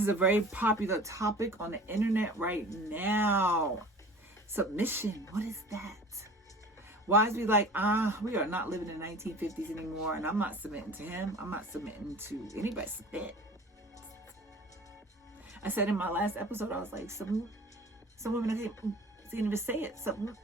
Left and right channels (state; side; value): normal; both; correlation 0.42